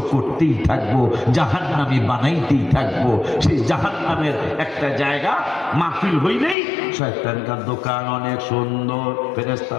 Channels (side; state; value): right; drops out; at 6.6 s